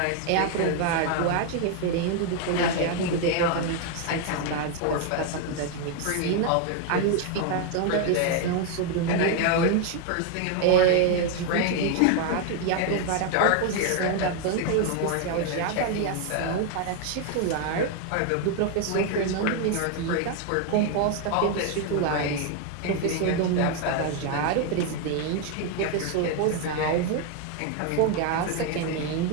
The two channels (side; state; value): both; different; correlation 0.01